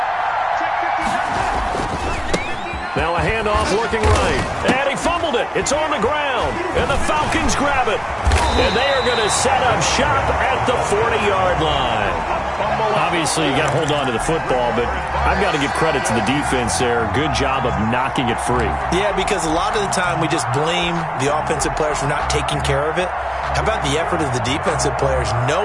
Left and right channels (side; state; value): both; identical; correlation 1.00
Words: Now a handoff looking right. And he fumbled it. It's on the ground. And the Falcons grab it. And they are going to set up shop at the 40-yard line. Obviously, you got to hold on to the football, but I've got to give credit to the defense there. Good job of knocking it free. Yeah, because a lot of the time we just blame the offensive players for not taking care of it. How about the effort of the defensive players